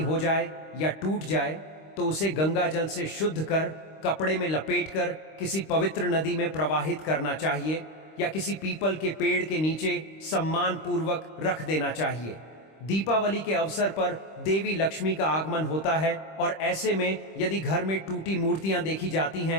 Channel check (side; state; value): right; late; 26 ms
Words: हो जाए या टूट जाए तो उसे गंगा जल से शुद्ध कर कपड़े में लपेटकर किसी पवित्र नदी में प्रवाहित करना चाहिए या किसी पीपल के पेड़ के नीचे सम्मान पूर्वक रख देना चाहिए। दीपावली के अवसर पर देवी लक्ष्मी का आगमन होता है और ऐसे में यदि घर में टूटी मूर्तियां देखी जाती